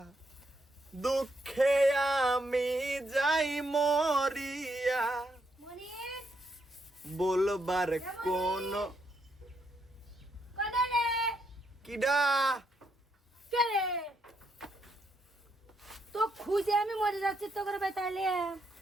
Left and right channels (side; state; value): both; normal; correlation 0.77